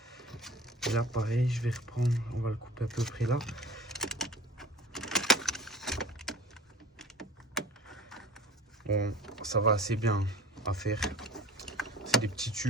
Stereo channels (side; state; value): both; normal; correlation 0.43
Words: Et là pareil, je vais reprendre, on va le couper à peu près là. Bon, ça va assez bien à faire. C'est des petits